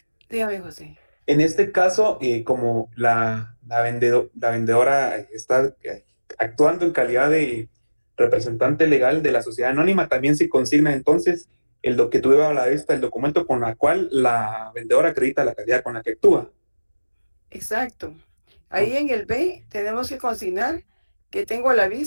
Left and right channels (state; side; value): inverted; both; correlation -1.00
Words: Dígame, José. En este caso, como la vendedora está actuando en calidad de representante legal de la sociedad anónima, también se consigna entonces lo que tuve a la vista, el documento con el cual la vendedora acredita la calidad con la que actúa. Exacto. Ahí en el B tenemos que consignar que tengo a la